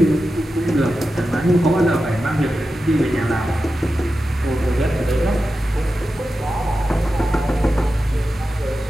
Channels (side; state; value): both; normal; correlation 0.91